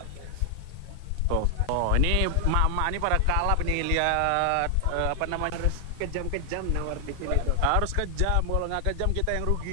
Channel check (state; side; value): different; both; correlation 0.00